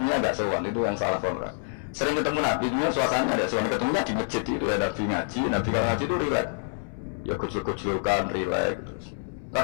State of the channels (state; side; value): silent; right; 60 dB below the other